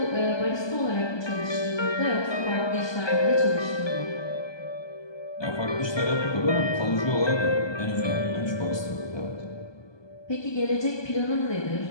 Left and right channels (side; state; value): right; late; 1.2 ms